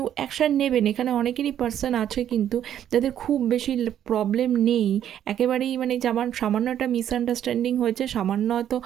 অ্যাকশান নেবেন। এখানে অনেকেরই পার্সন আছে কিন্তু যাদের খুব বেশি প্রবলেম নেই, একেবারেই মানে যেমন সামান্য একটা মিসআন্ডারস্ট্যান্ডিং হয়েছে, সামান্য হয়তো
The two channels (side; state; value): left; quieter; 10.4 dB